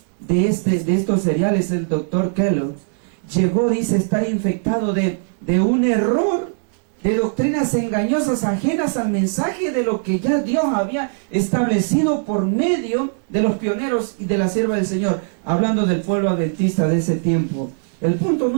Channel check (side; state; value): left; silent; 66 dB below the other